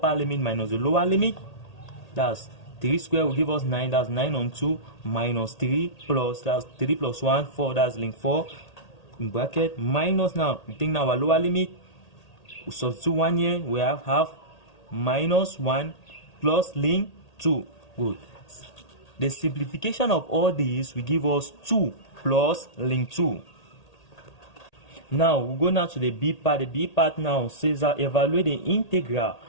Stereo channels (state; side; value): late; right; 1.8 ms